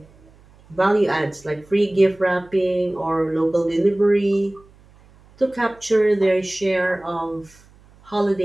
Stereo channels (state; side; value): noise; right; hum, 28 dB below the sound